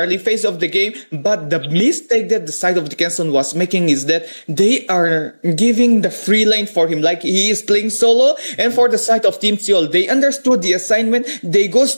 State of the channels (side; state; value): both; inverted; correlation -1.00